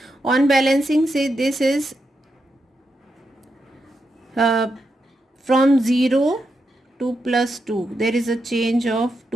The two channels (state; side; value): normal; both; correlation 0.85